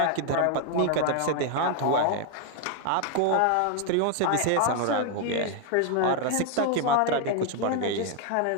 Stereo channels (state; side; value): different; both; correlation 0.01